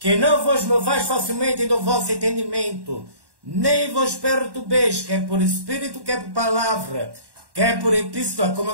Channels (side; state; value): left; late; 1.1 ms